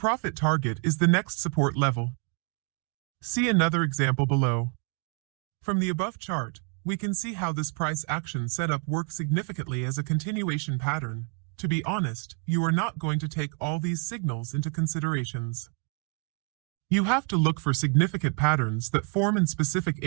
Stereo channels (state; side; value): quieter; left; 37.8 dB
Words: target is the next support level. See another example below. From the above chart, we can see how this price action setup works significantly as a continuation pattern. To be honest, you are not going to take all these signals into considerations. You have to look for significant patterns that form in specific